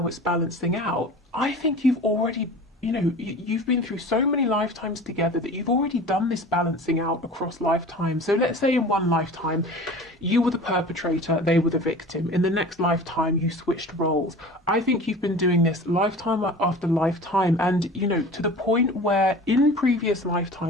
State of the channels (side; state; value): both; normal; correlation 0.39